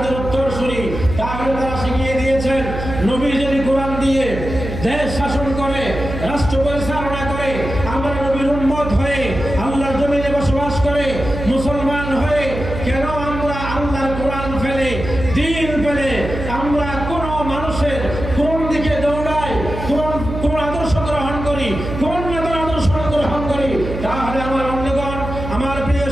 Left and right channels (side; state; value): right; noise; hum, 7 dB below the sound